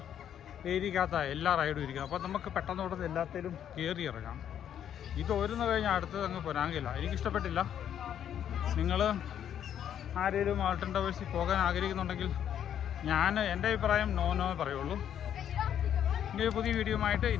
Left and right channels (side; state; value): right; quieter; 9.7 dB